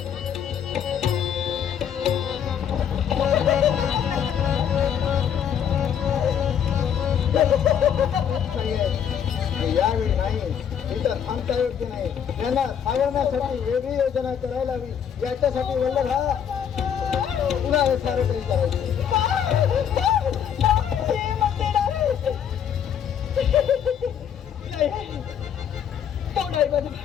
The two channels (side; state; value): right; quieter; 8.5 dB